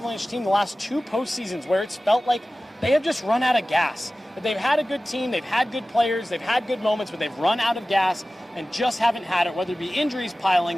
team the last 2 postseasons where it's felt like they have just run out of gas. But they've had a good team, they've had good players, they've had good moments, but they've run out of gas and just haven't had it, whether it be injuries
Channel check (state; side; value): normal; both; correlation 0.96